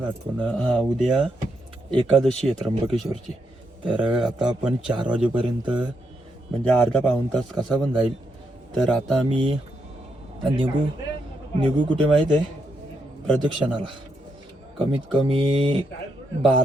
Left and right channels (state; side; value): normal; both; correlation 0.80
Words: आठवण. हां, उद्या एकादशी आहे त्र्यंबकेश्वरची. तर आता आपण 4 वाजेपर्यंत म्हणजे अर्धा पाऊण तास कसा पण जाईल. तर आता आम्ही निघू कुठे माहीत आहे? प्रदक्षिणाला. कमीत कमी